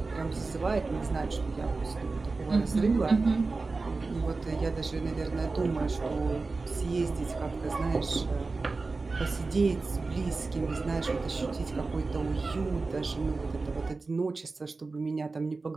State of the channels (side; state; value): left; quieter; 3.8 dB